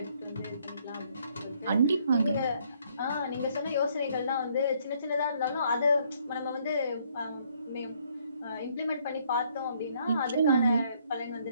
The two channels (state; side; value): inverted; both; correlation -0.67